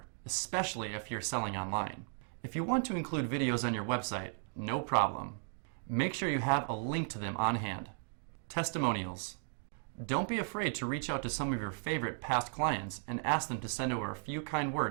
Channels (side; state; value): left; silent; 54 dB below the other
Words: especially if you're selling online. If you want to include videos on your website, no problem. Make sure you have a link to them on hand. Testimonials. Don't be afraid to reach out to some of your favorite past clients and ask them to send over a few kind